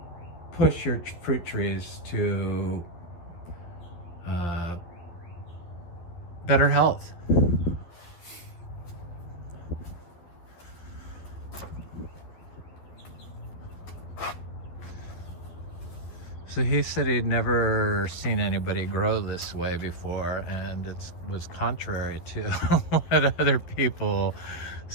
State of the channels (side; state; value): right; late; 12 ms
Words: push your fruit trees to better health. So he said he'd never seen anybody grow this way before, and it was contrary to what other people